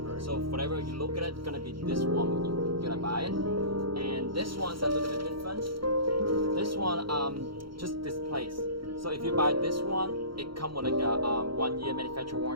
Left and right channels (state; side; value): late; left; 0.74 ms